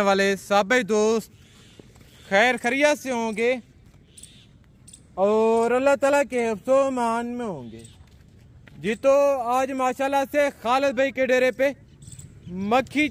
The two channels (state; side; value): identical; both; correlation 1.00